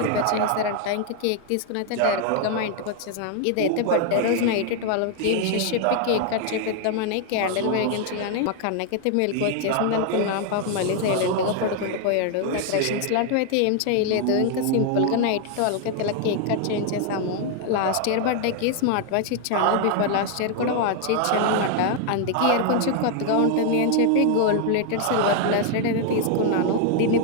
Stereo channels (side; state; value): both; different; correlation 0.00